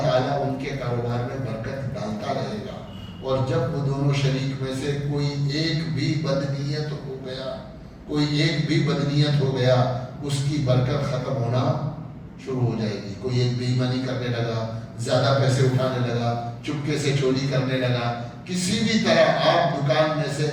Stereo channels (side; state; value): both; identical; correlation 1.00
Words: تعالیٰ ان کے کاروبار میں برکت ڈالتا رہے گا. اور جب وہ دونوں شریک میں سے کوئی ایک بھی بدنیت ہو گیا اس کی برکت ختم ہونا شروع ہو جائے گی. کوئی ایک بے ایمانی کرنے لگا، زیادہ پیسے اٹھانے لگا، چپکے سے چوری کرنے لگا، کسی بھی طرح آپ دکان میں سے